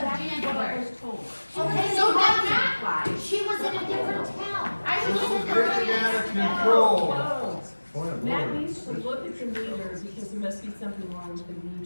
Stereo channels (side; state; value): both; inverted; correlation -1.00